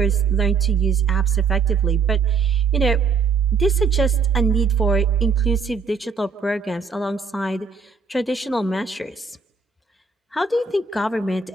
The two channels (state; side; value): quieter; left; 5.3 dB